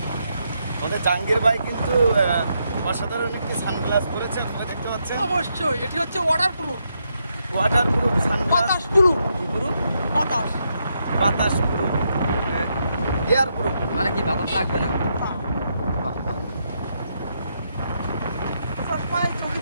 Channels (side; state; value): both; inverted; correlation -0.80